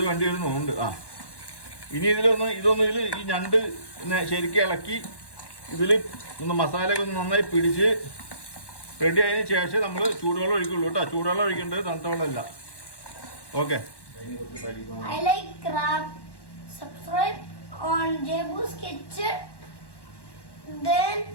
വേണ്ടി വരുന്നുണ്ട്. ഇനി ഇതൊന്ന് ഈ ഞണ്ട് ശരിക്കും ഇളക്കി ഇതിൽ ഒന്ന് മസാലയൊക്കെ ഒന്ന് നന്നായി പിടിച്ച് റെഡി ആയതിനു ശേഷം നമ്മൾ ചൂടുവെള്ളം ഒഴിക്കുള്ളൂ കേട്ടോ. ചൂടുവെള്ളം ഒഴിക്കേണ്ടത് തണുത്ത വെള്ളമല്ല. Okay, I like crab. Subscribe on Jebu's Kitchen. Then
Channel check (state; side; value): late; right; 1.1 ms